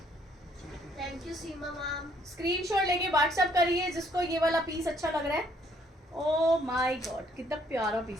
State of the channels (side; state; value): both; normal; correlation 0.66